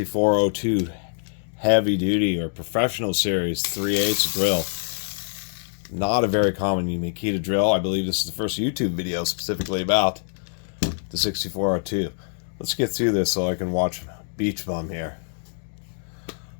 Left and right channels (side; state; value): right; silent; digital silence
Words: heavy duty or professional series 3/8 drill. Not a very common Makita drill. I believe this is the first YouTube video specifically about the 6402. Let's get through this so I can watch Beach Bum here.